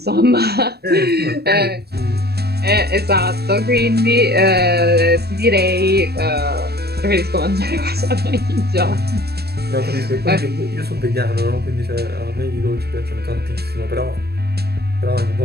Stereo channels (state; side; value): late; left; 0.47 ms